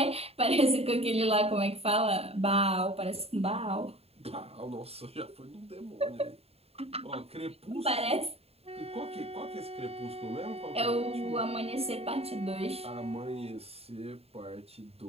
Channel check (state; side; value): late; left; 0.29 ms